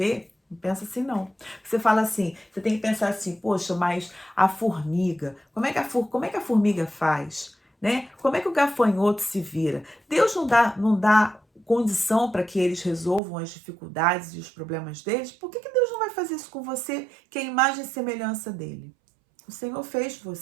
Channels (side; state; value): left; drops out; at 13.2 s